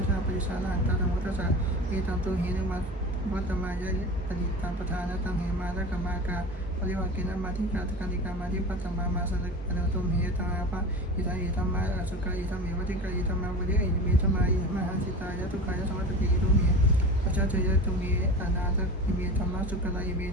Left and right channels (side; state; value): both; normal; correlation 0.32